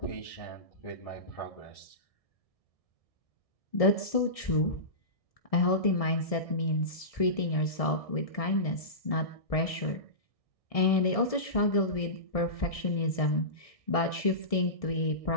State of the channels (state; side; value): late; right; 1.6 ms